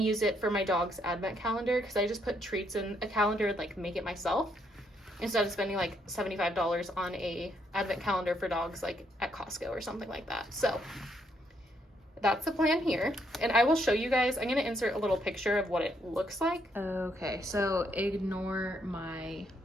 use it for my dog's advent calendar, because I just put treats in a calendar and like make it myself, instead of spending like $75 on a advent calendar for dogs like at Costco or something like that. So that's the plan here. And I will show you guys, I'm going to insert a little picture of what it looks like. Okay, so ignore my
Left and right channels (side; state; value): both; normal; correlation 0.73